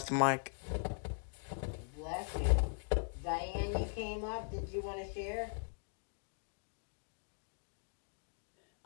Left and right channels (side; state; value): right; silent; digital silence